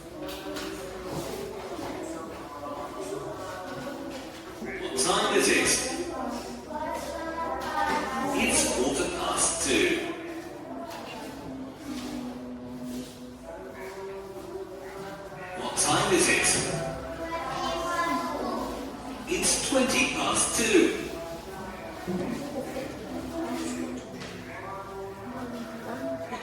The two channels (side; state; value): both; identical; correlation 1.00